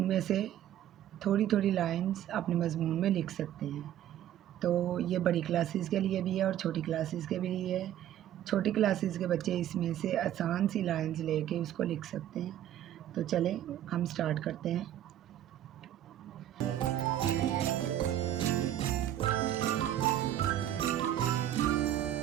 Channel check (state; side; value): quieter; left; 11.7 dB